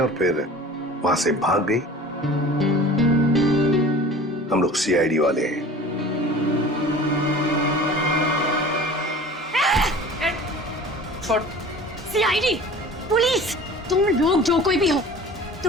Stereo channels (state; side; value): normal; both; correlation 0.42